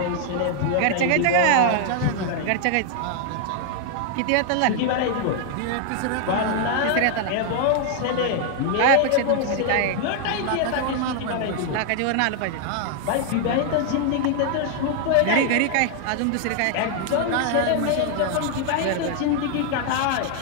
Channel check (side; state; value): both; different; correlation 0.00